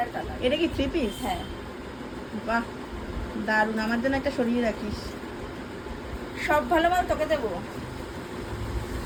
কালার। এটা কি থ্রি পিস? হ্যাঁ, বাহ দারুন, আমার জন্য একটা সরিয়ে রাখিস। সব ভালো মাল তোকে দেবো।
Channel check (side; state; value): both; identical; correlation 1.00